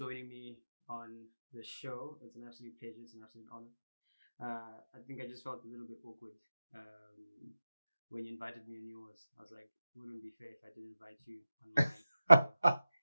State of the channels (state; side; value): inverted; both; correlation -0.92